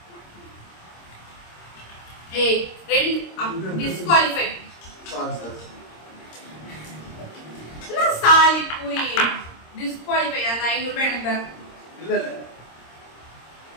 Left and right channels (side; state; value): right; late; 26 ms